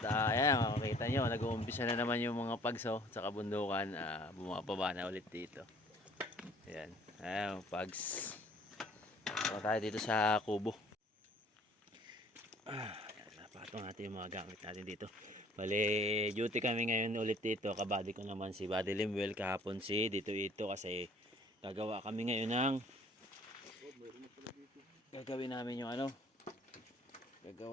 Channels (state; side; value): normal; both; correlation 0.55